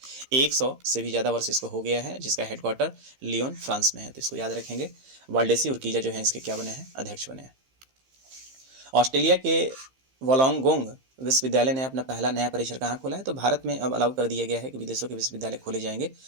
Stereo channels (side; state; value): left; late; 15 ms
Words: 100 से भी ज़्यादा वर्ष इसको हो गया है, जिसका हेडक्वार्टर लियोन फ्रांस में है। तो इसको याद रखेंगे। वाल्डेसी उर्किजा जो है इसके क्या बने हैं, अध्यक्ष बने हैं। ऑस्ट्रेलिया के वोलोंगोंग विश्वविद्यालय ने अपना पहला नया परिसर कहाँ खोला है, तो भारत में अब अलाउ कर दिया गया है कि विदेशों के विश्वविद्यालय खोले जाएंगे।